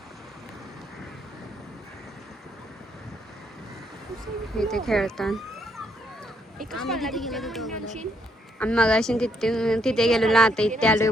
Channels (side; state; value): both; normal; correlation 0.73